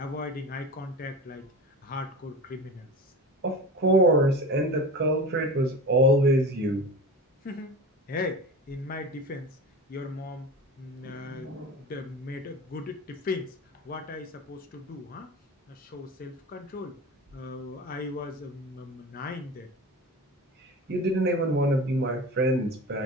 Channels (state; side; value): normal; both; correlation 0.32